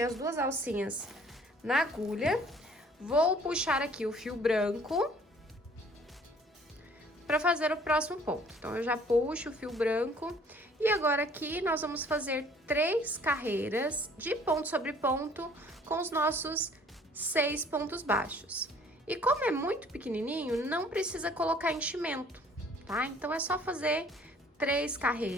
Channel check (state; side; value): normal; both; correlation 0.56